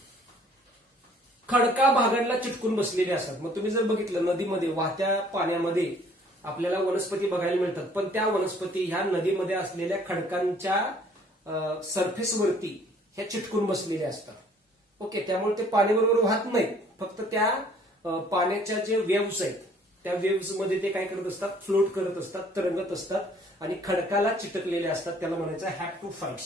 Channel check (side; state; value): both; normal; correlation 0.58